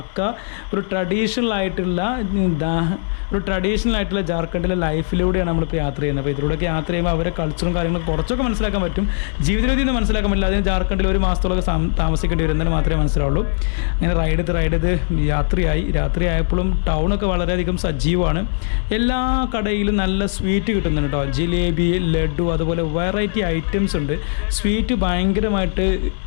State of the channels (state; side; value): silent; right; digital silence